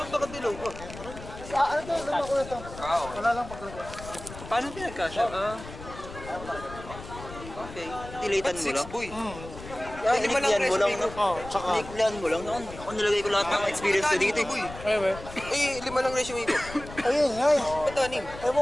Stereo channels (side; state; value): left; noise; rumble, 13 dB below the sound